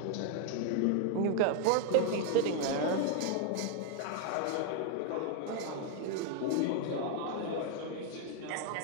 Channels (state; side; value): different; both; correlation 0.00